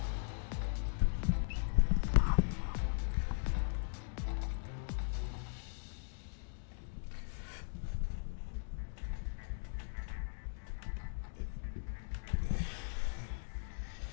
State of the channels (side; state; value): right; silent; digital silence